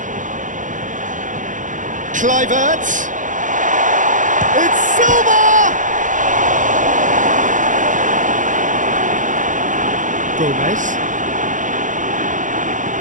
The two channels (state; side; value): late; left; 0.37 ms